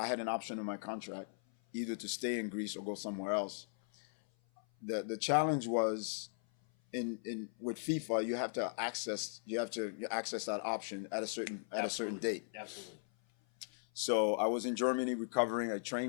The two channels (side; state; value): right; silent; 52 dB below the other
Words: had an option in my contract. either to stay in Greece or go somewhere else. The challenge was in with FIFA, you have to access that option at a certain date. Absolutely. So I was in Germany recovering. I